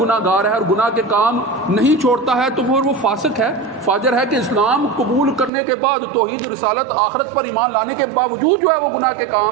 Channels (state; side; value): drops out; left; at 5.5 s